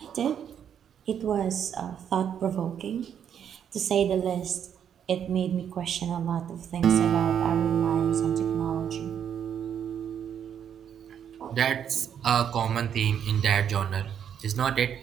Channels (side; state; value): left; quieter; 8.7 dB